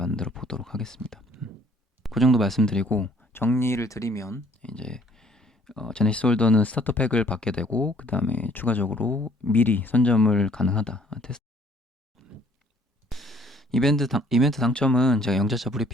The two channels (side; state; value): both; normal; correlation 0.59